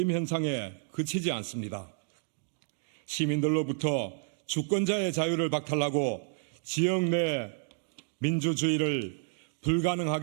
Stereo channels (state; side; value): silent; left; 57 dB below the other